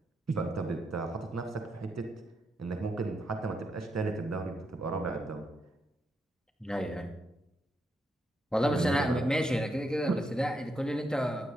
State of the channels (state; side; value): normal; both; correlation 0.80